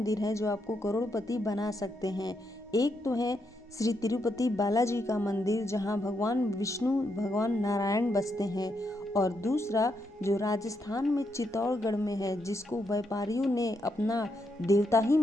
हैं जो आपको करोड़पति बना सकते हैं। एक तो है श्री तिरुपति बालाजी का मंदिर जहां भगवान विष्णु भगवान नारायण बसते हैं, और दूसरा जो राजस्थान में चित्तौड़गढ़ में है जिसको व्यापारियों ने अपना देवता ही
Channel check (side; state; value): both; normal; correlation 0.80